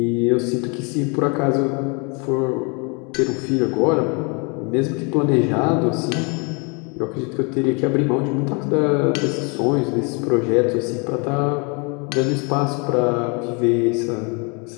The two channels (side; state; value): right; quieter; 32.9 dB